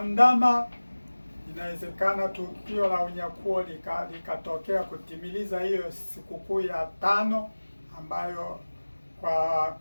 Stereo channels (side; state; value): both; inverted; correlation -1.00